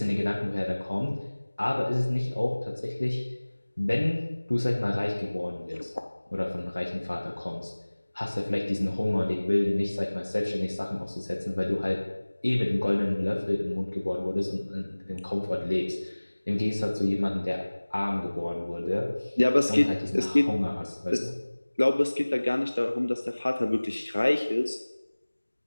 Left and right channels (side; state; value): both; inverted; correlation -1.00